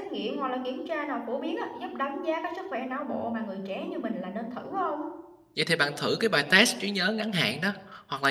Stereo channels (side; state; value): both; identical; correlation 1.00